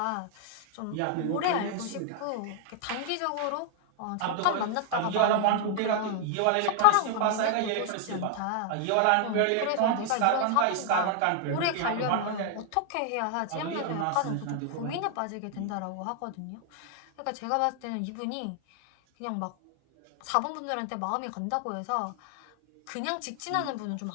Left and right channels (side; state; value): both; different; correlation 0.00